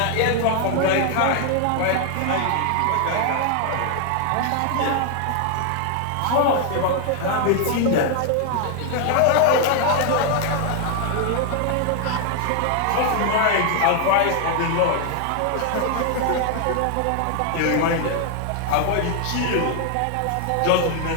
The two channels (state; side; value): different; both; correlation 0.00